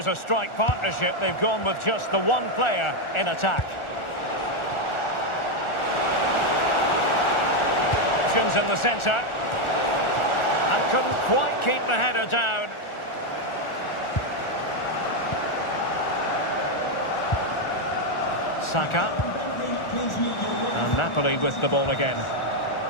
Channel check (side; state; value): right; late; 1.4 ms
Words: a strike partnership, they've gone with just the one player in attack. Options in the centre. And couldn't quite keep the header down. Saka. And Napoli with the ball again.